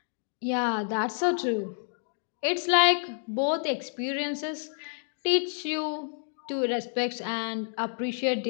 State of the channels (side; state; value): right; silent; digital silence